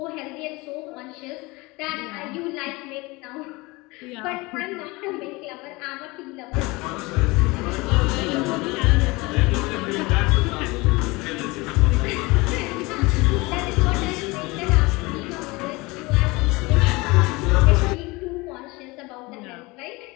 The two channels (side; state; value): right; quieter; 23.7 dB